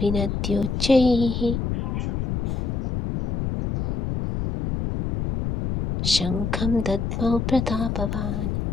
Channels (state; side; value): noise; left; rumble, 2 dB below the sound